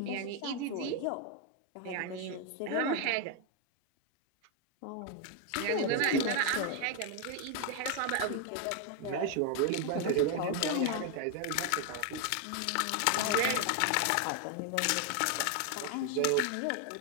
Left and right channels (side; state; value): both; different; correlation 0.01